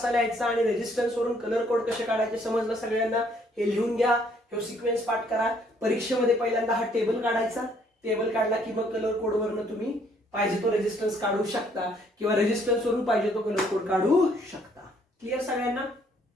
लिहायचा आणि रेजिस्टन्स वरून कलर कोड कसे काढायचे समजलं सगळ्यांना. हे लिहून घ्या, हे सिक्वेन्स पाठ करा. परीक्षेमध्ये पहिल्यांदा हा टेबल काढायचा. टेबल काढला की मग कलर कोड वरून तुम्ही पाहिजे तो रेजिस्टन्स काढू शकता किंवा रेजिस्टन्स वरून पाहिजे तो कलर कोड काढू शकता. क्लिअर सगळ्यांना.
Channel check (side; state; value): both; normal; correlation 0.65